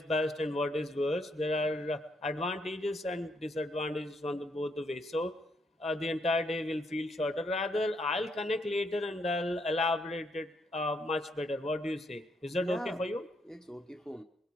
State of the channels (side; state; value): both; normal; correlation 0.75